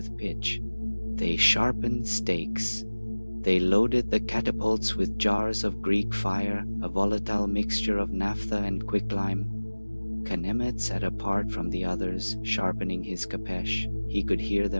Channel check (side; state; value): both; inverted; correlation -1.00